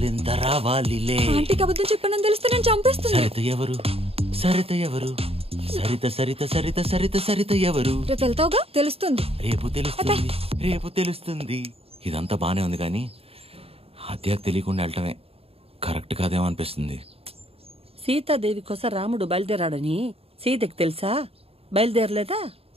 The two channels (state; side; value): late; left; 0.28 ms